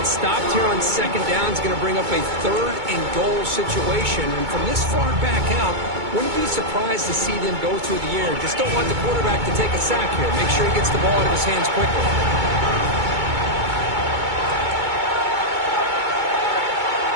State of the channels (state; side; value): late; left; 2.2 ms